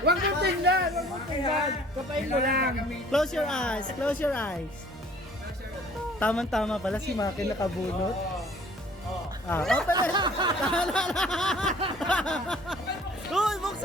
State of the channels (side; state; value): both; normal; correlation 0.53